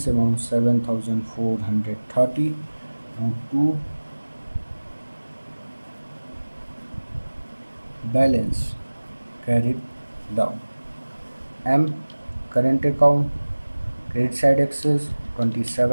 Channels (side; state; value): both; inverted; correlation -1.00